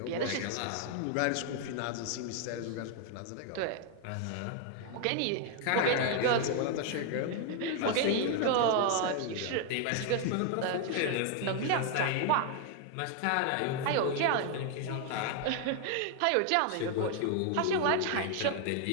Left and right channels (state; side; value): different; both; correlation 0.00